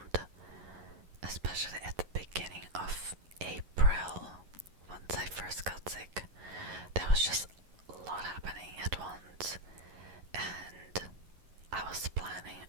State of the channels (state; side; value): late; left; 11 ms